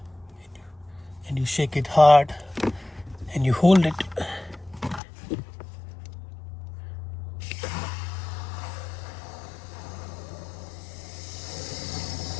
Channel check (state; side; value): drops out; right; at 5.0 s